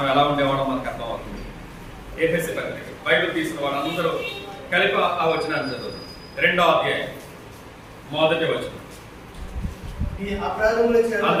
ఎలా ఉండేవాళ్ళం మనకు అర్థం అవుతుంది. ఎఫెసీ పత్రిక బైబిల్ తీసిన వాళ్ళందరూ కలిపి ఆ వచనాన్ని చదువు. 2వ అధ్యాయం 1వ వచనం.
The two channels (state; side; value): identical; both; correlation 1.00